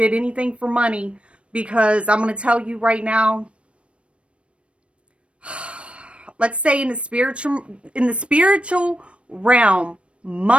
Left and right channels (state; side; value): late; left; 0.060 ms